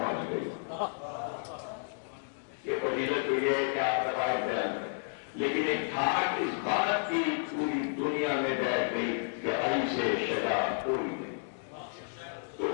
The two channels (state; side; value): silent; right; digital silence